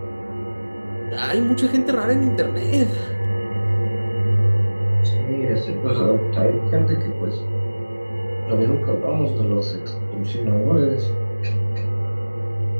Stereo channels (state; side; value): inverted; both; correlation -1.00